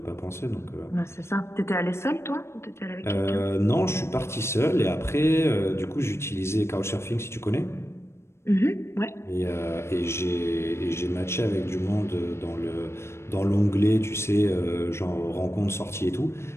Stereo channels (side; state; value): right; late; 0.13 ms